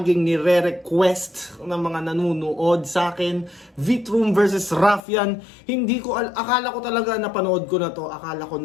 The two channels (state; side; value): drops out; right; at 5.0 s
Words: nire-request ng mga nanonood sa akin, Vitroom versus Ruffian. Akala ko talaga napanood ko na to, akala ko